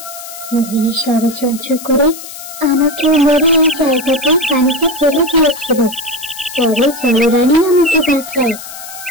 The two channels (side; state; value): left; noise; hiss, 13 dB below the sound